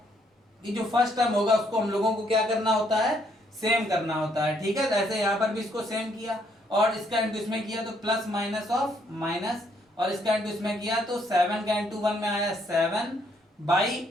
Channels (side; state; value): both; normal; correlation 0.70